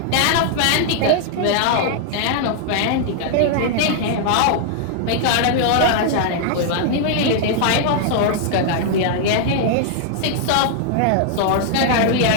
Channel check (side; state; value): both; different; correlation -0.01